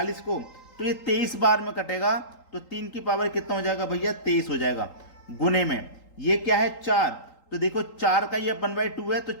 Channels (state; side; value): late; right; 3.8 ms